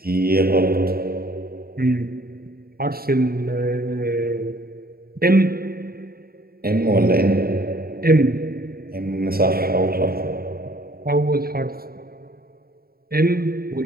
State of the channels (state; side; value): late; left; 0.44 ms